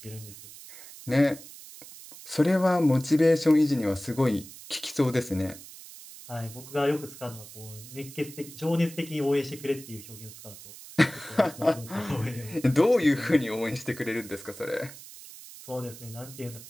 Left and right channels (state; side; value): noise; right; hiss, 16 dB below the sound